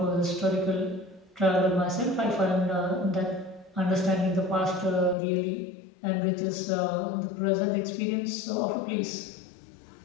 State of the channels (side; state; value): right; drops out; at 5.2 s